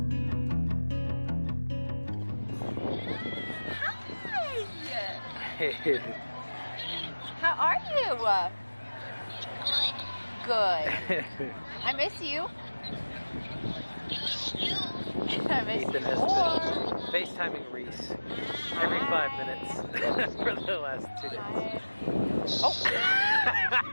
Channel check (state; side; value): inverted; both; correlation -1.00